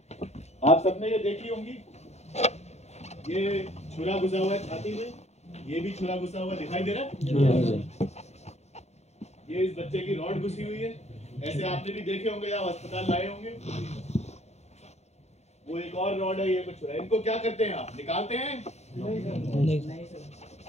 आप सबने ये देखी होंगी, ये छुरा घुसा हुआ है छाती में, ये भी छुरा घुसा हुआ दिखाई दे रहा है। ये इस बच्चे की रॉड घुसी हुई है, ऐसे आपने भी देखे होंगे, आप अस्पताल लाए होंगे। वो एक और रॉड है, ये कुछ छुरा। इनको क्या करते हैं आप? निकालते हैं? नहीं।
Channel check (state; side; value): late; right; 0.32 ms